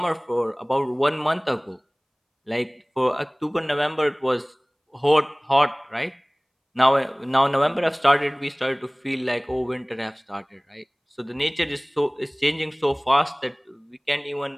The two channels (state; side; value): identical; both; correlation 1.00